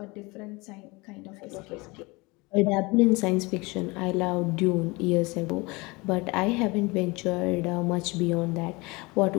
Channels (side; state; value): right; quieter; 25.0 dB